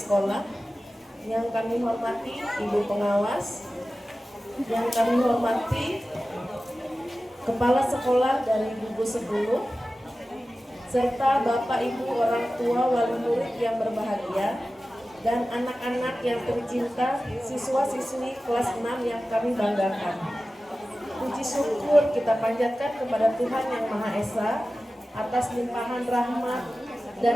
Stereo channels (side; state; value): both; normal; correlation 0.95